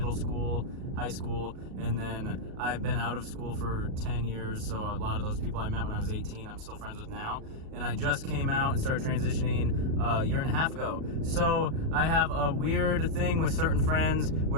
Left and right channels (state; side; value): late; left; 38 ms